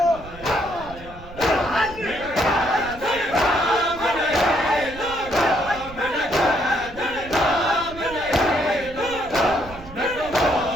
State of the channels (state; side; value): noise; right; rumble, 16 dB below the sound